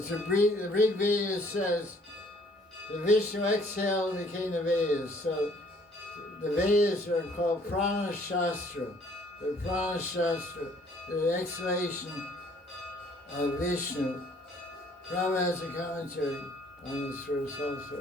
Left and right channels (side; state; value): both; normal; correlation 0.61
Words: Rig Veda says the Vishnu exhaled became the Vedas. So the Vedas are called Prana Shastra. The Prana Shastra, the exhalation of Vishnu. Prabhupada has a commentary on this verse